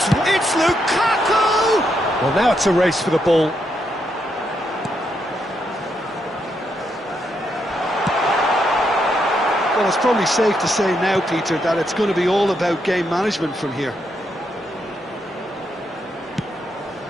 Lukaku! Well, now it's a race for the ball. Well, it's probably safe to say now, Peter, that it's going to be all about game management from here.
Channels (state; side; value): normal; both; correlation 0.79